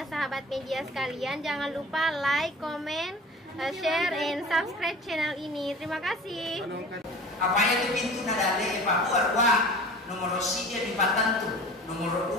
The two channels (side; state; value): both; normal; correlation 0.40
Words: sahabat media sekalian. Jangan lupa like, comment, share, and subscribe channel ini. Terima kasih. Apa yang pintu nadale Papua nomor dia di Patantu, nomor